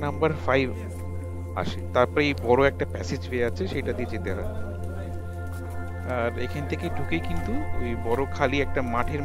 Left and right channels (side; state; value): both; identical; correlation 1.00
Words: নাম্বার 5 আসে, তারপরে এই বড় একটা প্যাসেজ ওয়ে আছে সেটা দিয়ে যেতে হয়। আর এখান থেকে ঢুকেই কিন্তু ওই বড় খালি একটা মাঠের